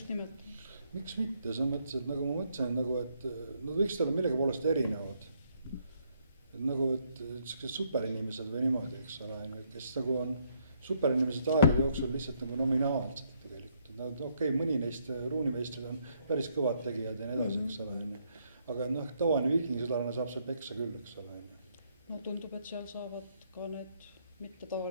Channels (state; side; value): inverted; both; correlation -0.72